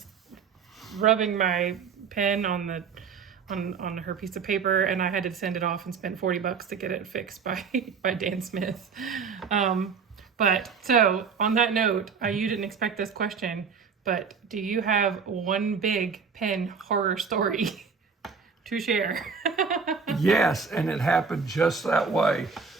rubbing my pen on her piece of paper, and I had to send it off and spend $40 to get it fixed by Dan Smith. But so on that note, you didn't expect this question, but do you have one big pen horror story to share? Yes, and it happened just that way.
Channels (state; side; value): quieter; left; 5.8 dB